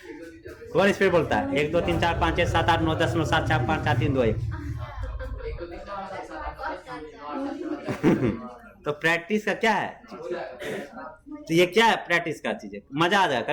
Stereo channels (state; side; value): identical; both; correlation 1.00